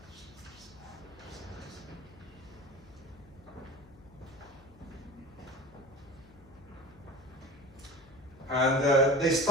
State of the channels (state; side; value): noise; left; hum, 23 dB below the sound